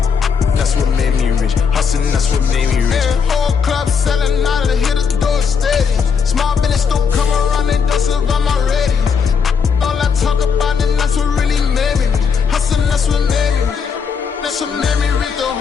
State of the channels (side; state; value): right; quieter; 6.2 dB